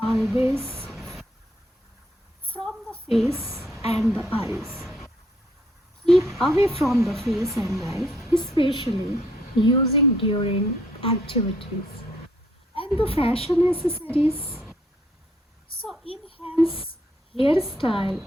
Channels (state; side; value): normal; both; correlation 0.67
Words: always from the face and the eyes. Keep away from the face and eyes, especially using during activities. And the fashion accessories. So enhance hairstyle